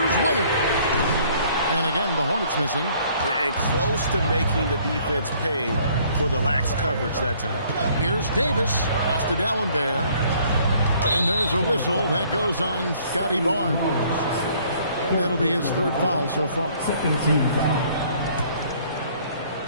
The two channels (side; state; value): both; inverted; correlation -0.60